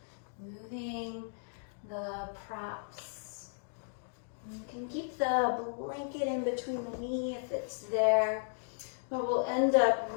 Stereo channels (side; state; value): right; silent; digital silence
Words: moving the props. You can keep the blanket in between the knee if it's there, but we'll end up